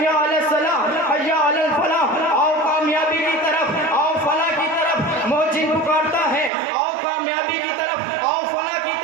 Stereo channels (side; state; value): left; drops out; at 6.5 s